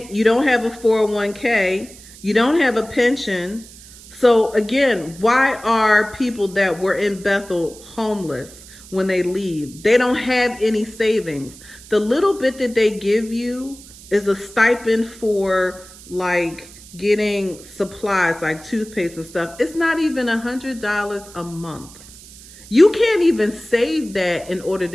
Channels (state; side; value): noise; right; hiss, 20 dB below the sound